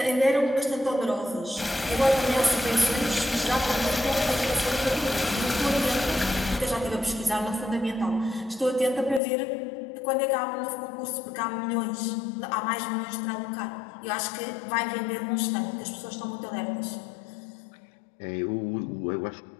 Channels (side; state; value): right; drops out; at 9.2 s